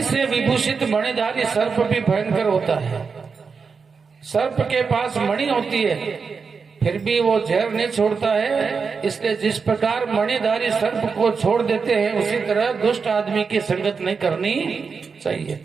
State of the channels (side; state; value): left; quieter; 5.3 dB